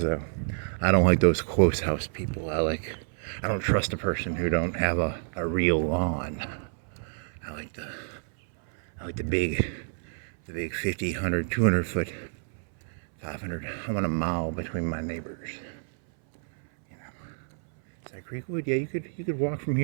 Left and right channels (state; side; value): silent; left; 59 dB below the other